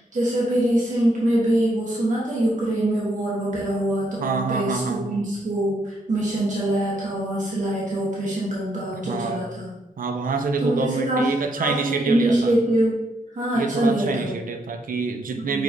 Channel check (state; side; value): normal; both; correlation 0.75